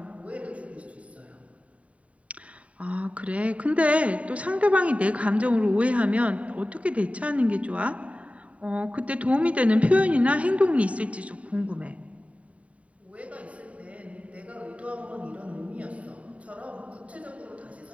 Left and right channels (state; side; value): late; left; 0.066 ms